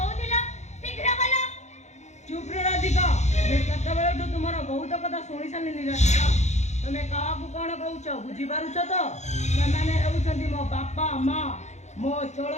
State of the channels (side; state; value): right; late; 0.33 ms